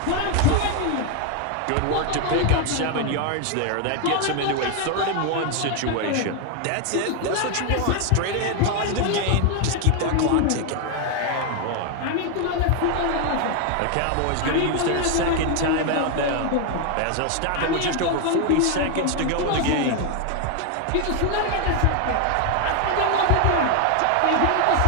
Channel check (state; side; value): different; both; correlation 0.01